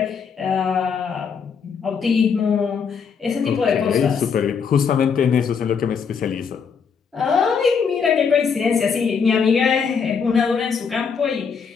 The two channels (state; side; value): quieter; right; 6.2 dB